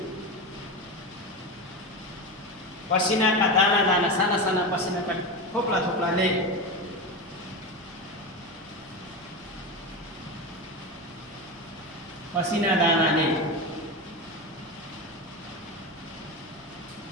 पसिनाका दाना दाना, साना साना पसिनाका थोप्ला थोप्लाले पसिना दानाले,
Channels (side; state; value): right; noise; hum, 26 dB below the sound